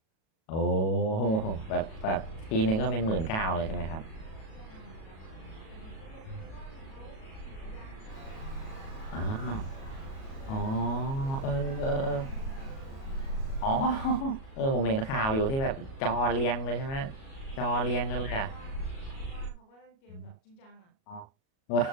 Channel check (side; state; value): right; late; 37 ms